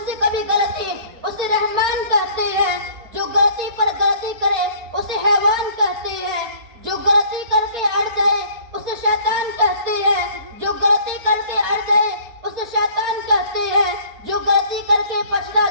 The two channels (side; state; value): left; late; 4.3 ms